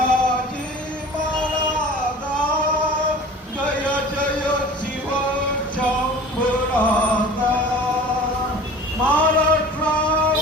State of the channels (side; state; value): both; normal; correlation 0.41